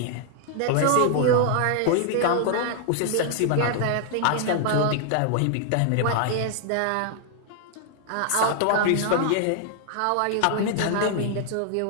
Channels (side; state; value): both; different; correlation 0.00